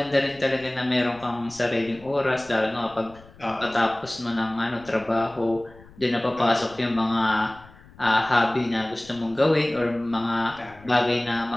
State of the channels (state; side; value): noise; left; rumble, 23 dB below the sound